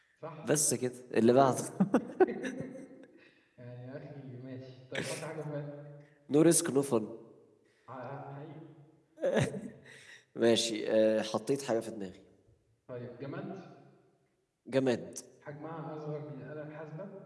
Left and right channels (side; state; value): both; identical; correlation 1.00